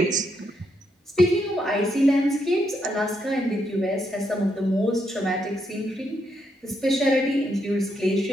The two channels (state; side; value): normal; both; correlation 0.78